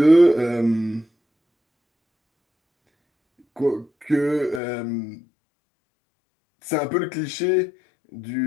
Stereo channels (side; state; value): right; drops out; at 4.6 s